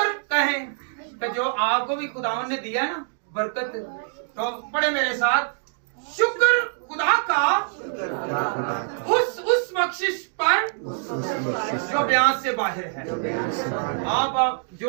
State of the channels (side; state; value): left; silent; digital silence